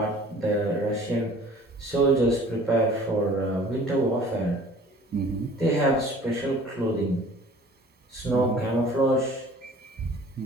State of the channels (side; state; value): both; normal; correlation 0.49